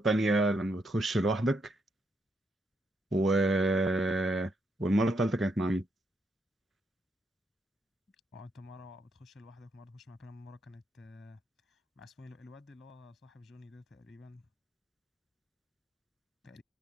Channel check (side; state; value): both; normal; correlation 0.77